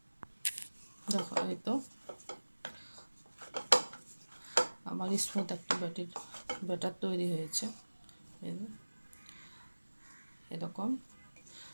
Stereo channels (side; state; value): both; inverted; correlation -1.00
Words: দেখো, এই তো আমার স্মুথ একটা ব্যাটার তৈরি হয়েছে। এরকম